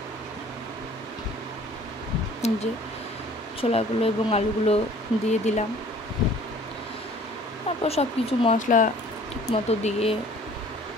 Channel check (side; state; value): both; normal; correlation 0.52